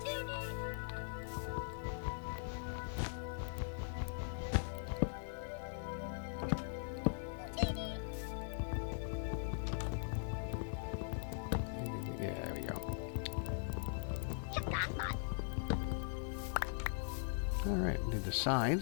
Alright, do the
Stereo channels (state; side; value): silent; right; 51 dB below the other